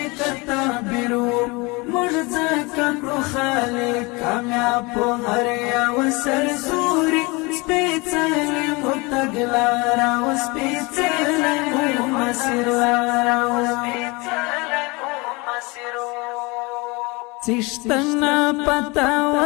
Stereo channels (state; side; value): quieter; right; 26.0 dB